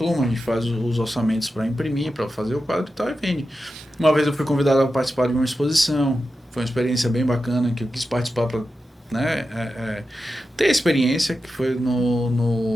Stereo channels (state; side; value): normal; both; correlation 0.91